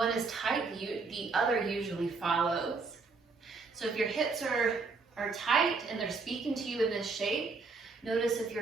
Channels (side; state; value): left; quieter; 4.3 dB